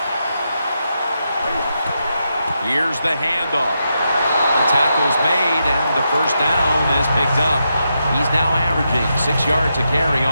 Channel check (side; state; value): both; inverted; correlation -0.84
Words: Here's the handoff. The tackle's made, and the first down is picked up. He's now averaging 6 yards a carry